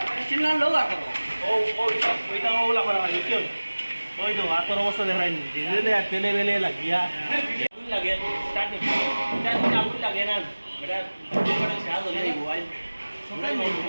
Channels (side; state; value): both; inverted; correlation -1.00